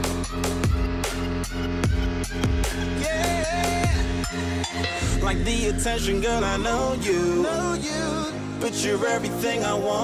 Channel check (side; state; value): both; identical; correlation 1.00